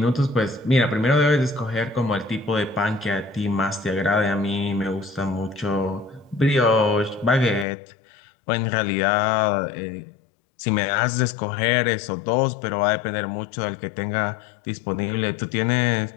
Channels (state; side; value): drops out; right; at 7.7 s